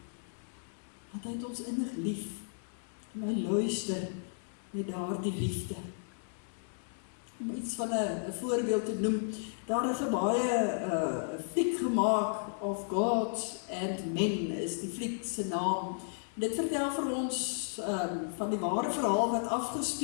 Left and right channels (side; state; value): right; silent; 55 dB below the other